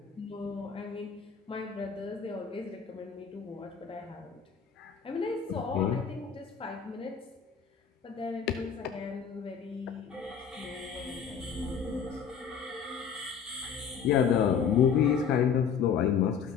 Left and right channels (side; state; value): right; quieter; 7.0 dB